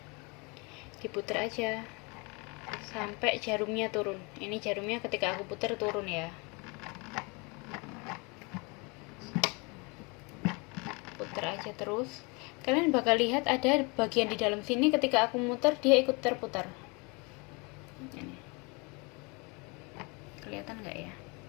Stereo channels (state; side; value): quieter; right; 29.6 dB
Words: Diputer aja sampai jarumnya turun. Ini jarumnya ketika aku puter turun ya. Puter aja terus. Kalian bakal lihat ada bagian di dalam sini ketika aku muter dia ikut terputar. Ini. Kelihatan nggak ya?